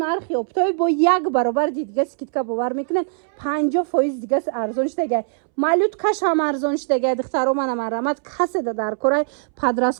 оптови бо як баробар дига скидка бовар мекунен 50% дига арзон шудагиай малюткашам арзон шудагиай духтаро мана марамат каседа дар корай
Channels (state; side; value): silent; left; 65 dB below the other